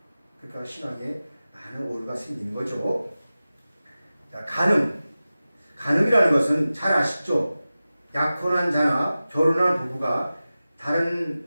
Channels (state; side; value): inverted; both; correlation -0.95